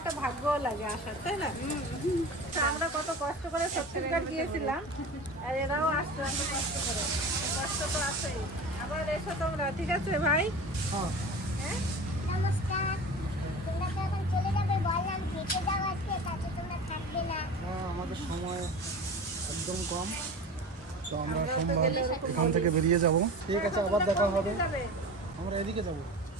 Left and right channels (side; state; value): both; normal; correlation 0.34